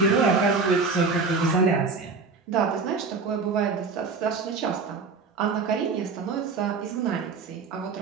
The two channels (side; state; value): left; quieter; 4.6 dB